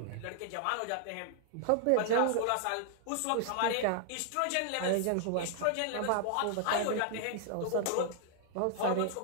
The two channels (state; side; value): different; both; correlation 0.00